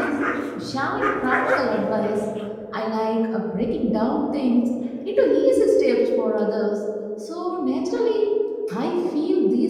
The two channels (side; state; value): both; identical; correlation 1.00